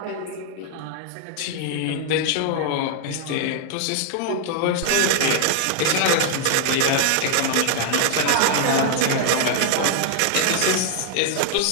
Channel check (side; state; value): both; different; correlation 0.00